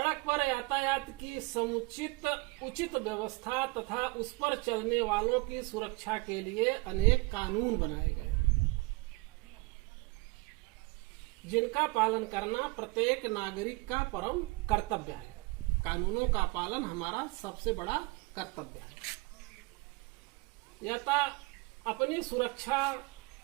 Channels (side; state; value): left; quieter; 25.6 dB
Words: पर यातायात की समुचित उचित व्यवस्था तथा उस पर चलने वालों की सुरक्षा के लिए अनेक कानून बनाए गए, जिनका पालन करना प्रत्येक नागरिक का परम कर्तव्य है। कानूनों का पालन हमारा सबसे बड़ा कर्तव्य है। अपनी सुरक्षा